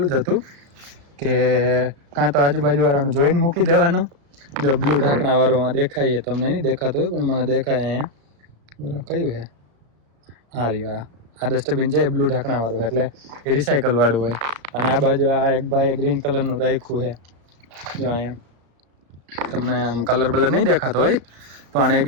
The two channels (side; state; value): left; late; 35 ms